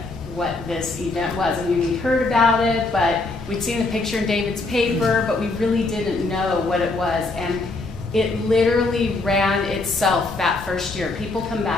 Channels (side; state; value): right; quieter; 3.3 dB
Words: what this event was. I mean, we heard about it, but we'd seen the picture in David's paper, but we really didn't know what it was. And it literally ran itself that first year. People come